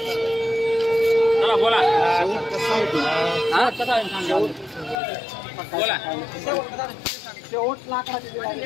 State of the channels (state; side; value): drops out; right; at 5.0 s